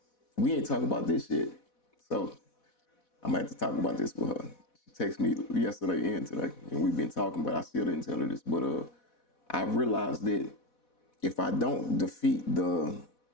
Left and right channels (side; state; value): right; late; 4.1 ms